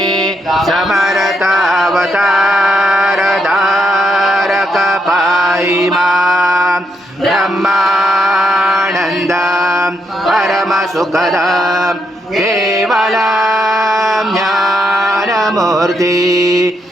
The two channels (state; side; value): normal; both; correlation 0.79